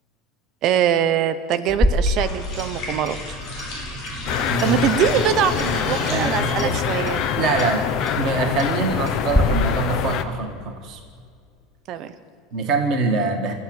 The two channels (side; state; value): both; normal; correlation 0.32